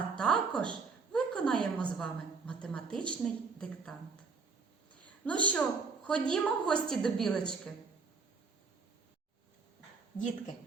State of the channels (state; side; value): quieter; left; 4.7 dB